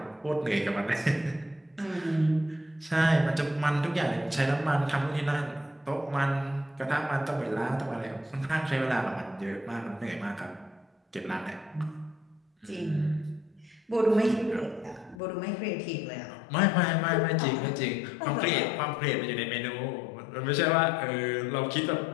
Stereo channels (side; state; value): right; drops out; at 15.2 s